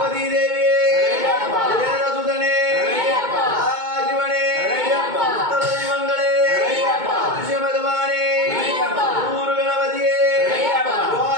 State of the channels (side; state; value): left; late; 2.2 ms